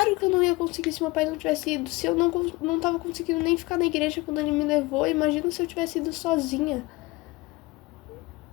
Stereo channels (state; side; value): quieter; right; 22.5 dB